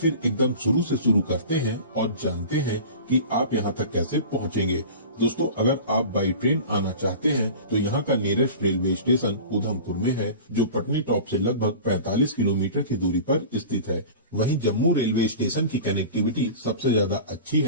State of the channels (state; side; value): inverted; both; correlation -0.36